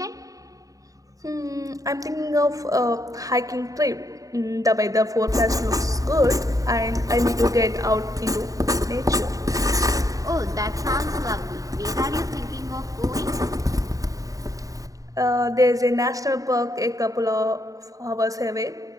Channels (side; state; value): left; late; 0.16 ms